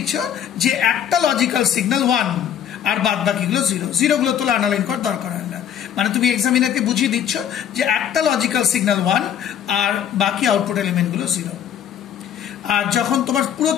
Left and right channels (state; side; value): quieter; right; 9.3 dB